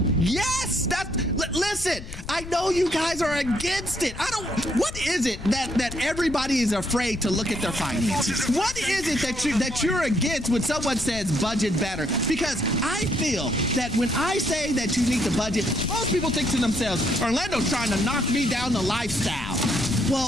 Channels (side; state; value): left; noise; rumble, 12 dB below the sound